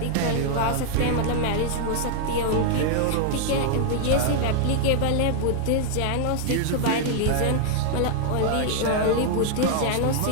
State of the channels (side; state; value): both; different; correlation 0.00